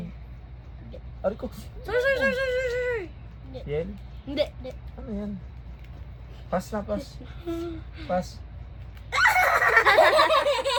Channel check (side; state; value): both; identical; correlation 1.00